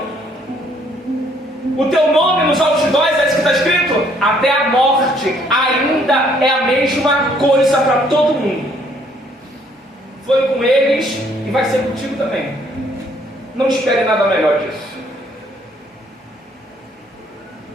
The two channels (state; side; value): normal; both; correlation 0.65